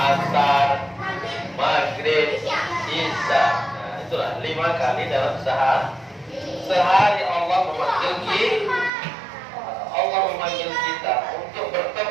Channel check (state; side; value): drops out; left; at 8.9 s